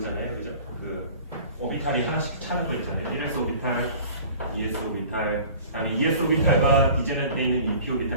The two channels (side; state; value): both; inverted; correlation -0.45